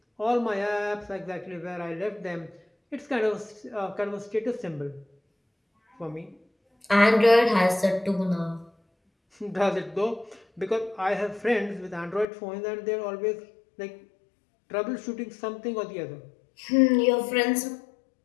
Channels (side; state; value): right; drops out; at 12.2 s